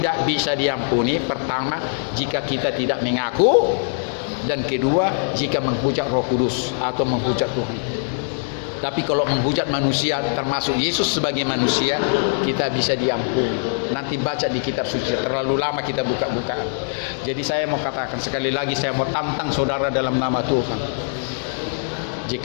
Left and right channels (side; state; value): right; silent; digital silence